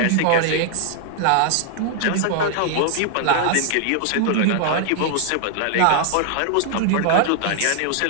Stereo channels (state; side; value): different; both; correlation 0.00